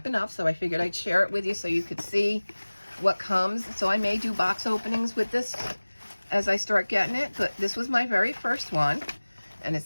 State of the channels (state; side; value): inverted; both; correlation -1.00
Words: Up. So I figured I'd share it with you so you could see what comes. So I may do box openings with this as I start getting it, but this was my very first one. And it